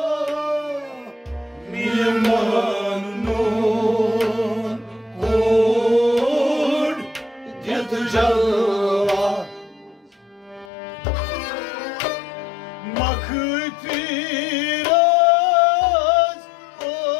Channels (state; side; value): drops out; right; at 10.7 s